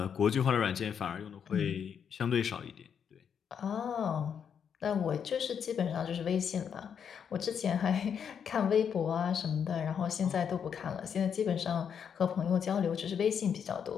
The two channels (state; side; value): quieter; right; 7.6 dB